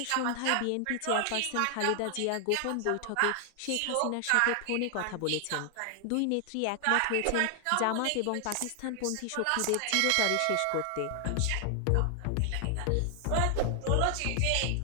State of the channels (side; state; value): both; different; correlation 0.00